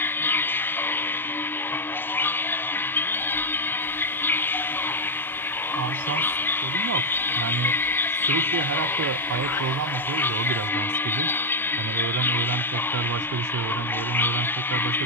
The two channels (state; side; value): normal; both; correlation 0.02